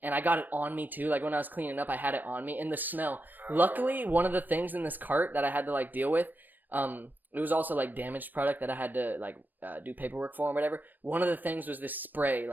and I got it on me too. Like, when I was cleaning up, I had it on me, and the smell. Luckily, one of the things in this cart that I had to like deal with, it was also like damaged product that I had to like do paperwork for and whatever. One of the things was this spray,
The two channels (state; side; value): late; left; 0.089 ms